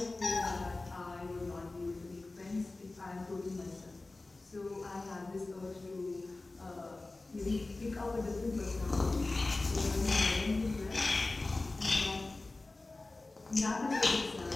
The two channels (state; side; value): quieter; right; 3.2 dB